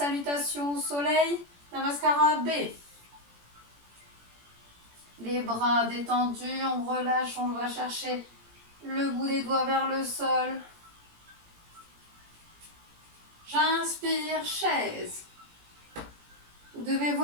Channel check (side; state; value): left; late; 17 ms